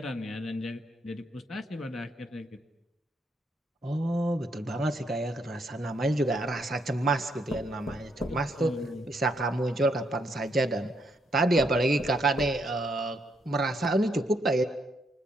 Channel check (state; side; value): normal; both; correlation 0.75